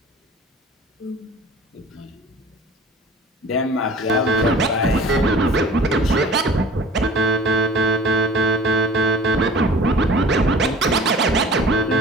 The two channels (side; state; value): both; normal; correlation 0.45